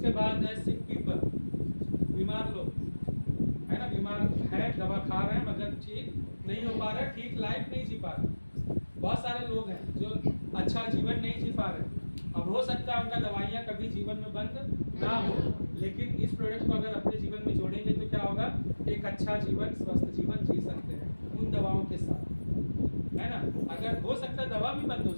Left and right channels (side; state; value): both; inverted; correlation -1.00